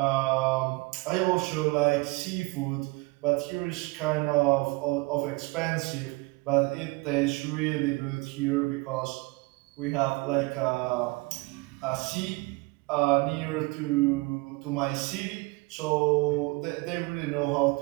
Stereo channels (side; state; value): left; quieter; 25.4 dB